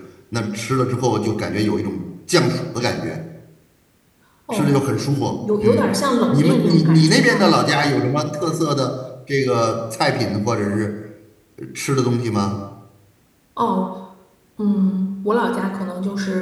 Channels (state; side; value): identical; both; correlation 1.00